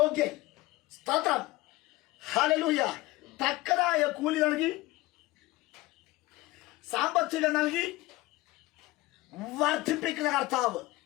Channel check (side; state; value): right; quieter; 19.6 dB